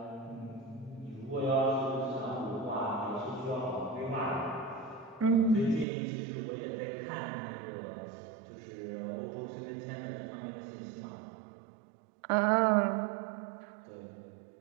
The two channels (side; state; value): left; drops out; at 5.9 s